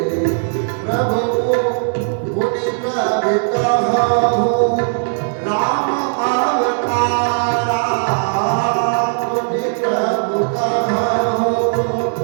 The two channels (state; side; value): silent; left; digital silence